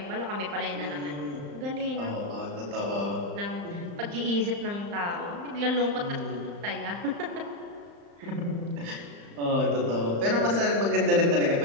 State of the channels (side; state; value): left; late; 35 ms